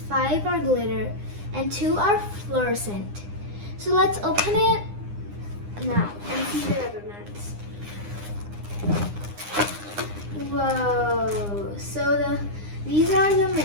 are glitter, and 2 are fluorescent. So let's open it now and see the rubber bands. Whoa! So these are the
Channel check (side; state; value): left; late; 9.8 ms